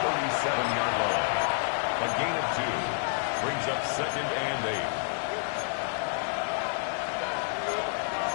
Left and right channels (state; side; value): silent; right; digital silence